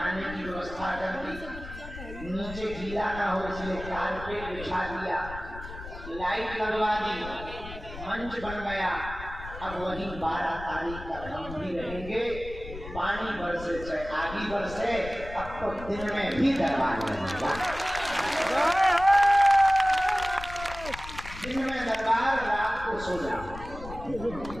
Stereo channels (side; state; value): left; noise; rumble, 12 dB below the sound